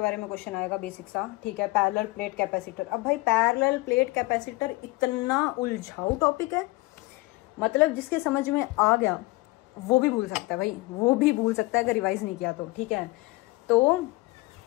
बारे में क्वेश्चन आएगा बेसिक सा, ठीक है। Parallel plate capacitor. अब भाई पैरेलल प्लेट कैपेसिटर इतना उलझाऊ टॉपिक है, मतलब जिसके समझ में आ गया वो भी भूल सकता है भाई, वो भी भूल सकता है अगर रिवाइज नहीं किया तो, ठीक है। तो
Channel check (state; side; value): quieter; right; 21.9 dB